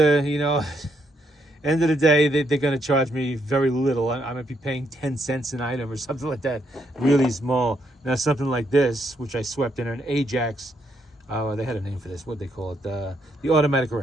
End of the day, they're going to charge me very little. I might be paying 10 cents an item or something like that, really small. Now something like this, which I swept in an Ajax, they had a name for this. What they call it? The automatic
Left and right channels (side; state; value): both; normal; correlation 0.76